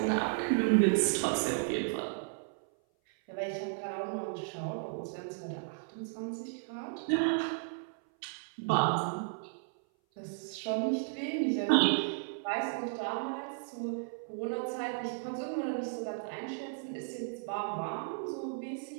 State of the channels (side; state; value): left; silent; 55 dB below the other